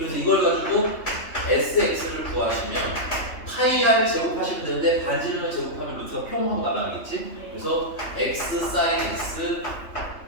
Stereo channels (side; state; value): right; late; 3.2 ms